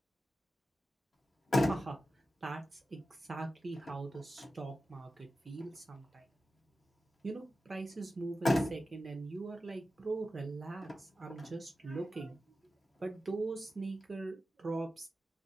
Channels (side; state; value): both; normal; correlation 0.93